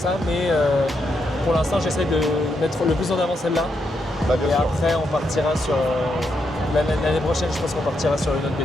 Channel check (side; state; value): both; normal; correlation 0.81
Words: mais pour l'instant j'essaie de mettre le plus en avant celle-là. Et après on partira sur l'année prochaine, je pense qu'on partira sur une autre